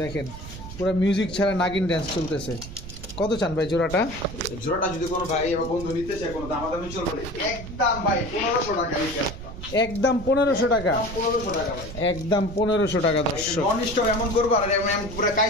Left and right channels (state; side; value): noise; right; rumble, 11 dB below the sound